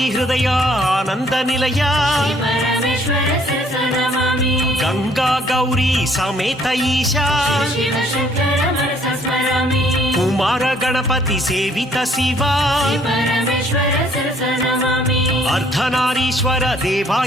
हृदय आनन्दनिलय परमेश्वरस्य नमामि गंगा गौरी समेत ईशा शिव शङ्कर मनसा स्मरामि कुमार गणपति सेवित शिवा परमेश्वरस्य नमामि अर्धनारीश्वर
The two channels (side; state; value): both; normal; correlation 0.63